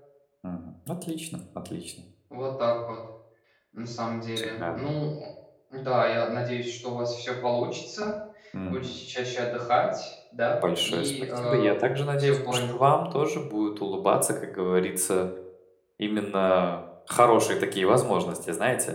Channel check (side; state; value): both; identical; correlation 1.00